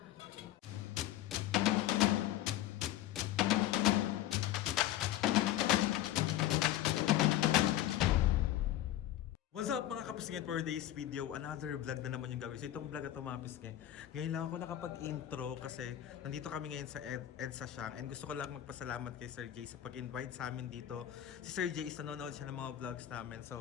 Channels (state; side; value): quieter; right; 13.1 dB